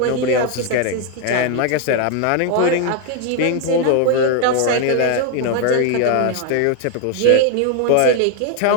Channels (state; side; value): different; both; correlation 0.01